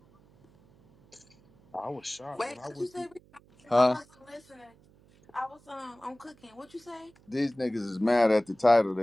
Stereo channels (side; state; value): right; noise; hum, 29 dB below the sound